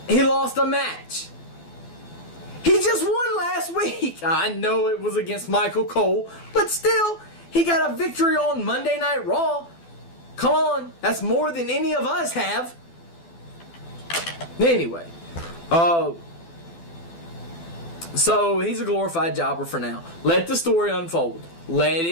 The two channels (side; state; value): right; late; 12 ms